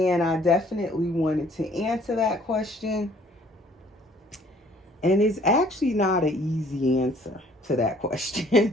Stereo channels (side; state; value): both; normal; correlation 0.58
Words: I definitely wanted to answer that question. And it's actually not an easy answer to that